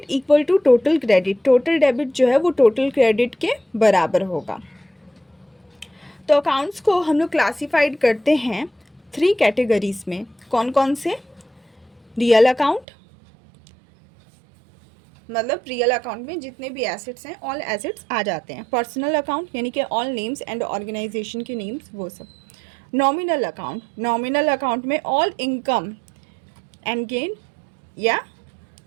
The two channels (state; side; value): drops out; left; at 12.9 s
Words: equal to total credit, total debit जो है वो टोटल क्रेडिट के बराबर होगा। तो अकाउंट्स को हम लोग क्लासिफाइड करते हैं 3 कैटेगरीज में। कौन कौन से, रियल अकाउंट, मतलब रियल अकाउंट में जितने भी एसेट्स हैं ऑल एसेट्स आ जाते हैं। पर्सनल अकाउंट यानी कि ऑल नेम्स एंड ऑर्गेनाइजेशन के नेम्स वो सब। नॉमिनल अकाउंट, नॉमिनल अकाउंट में ऑल इनकम एंड गेन या